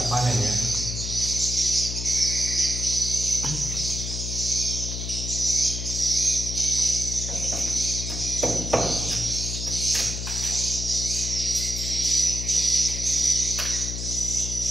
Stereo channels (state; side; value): noise; left; hum, 5 dB below the sound